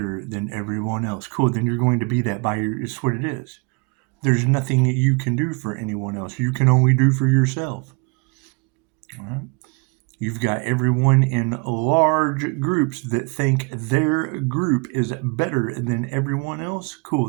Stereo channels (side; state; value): left; quieter; 30.7 dB